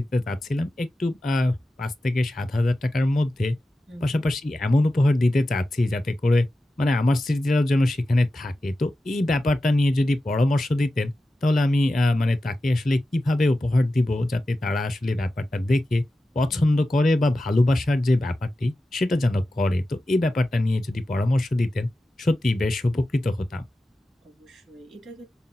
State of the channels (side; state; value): both; normal; correlation 0.93